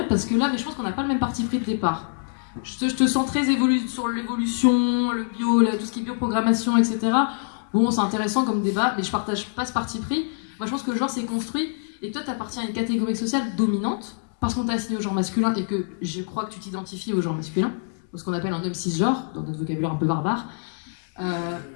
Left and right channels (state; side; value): silent; right; digital silence